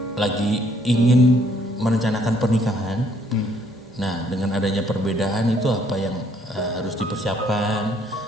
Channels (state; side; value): normal; both; correlation 0.65